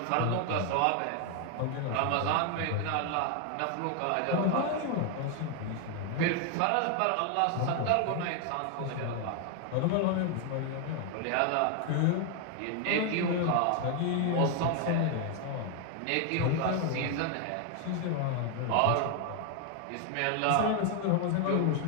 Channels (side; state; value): both; different; correlation 0.00